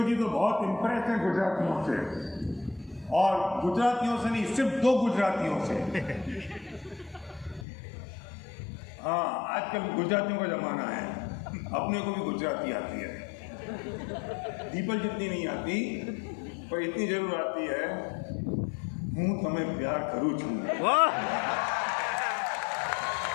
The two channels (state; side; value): drops out; right; at 7.7 s